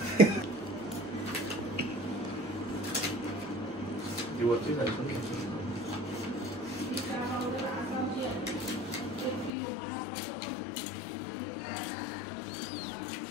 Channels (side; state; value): right; drops out; at 9.5 s